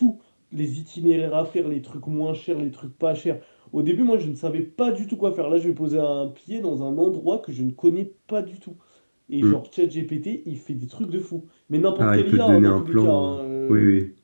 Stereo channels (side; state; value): both; inverted; correlation -1.00